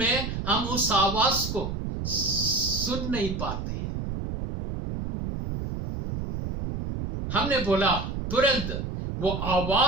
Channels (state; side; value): noise; right; rumble, 5 dB below the sound